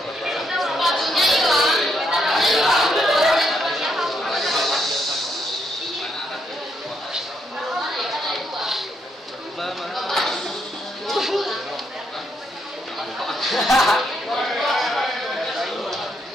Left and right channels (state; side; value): normal; both; correlation 0.76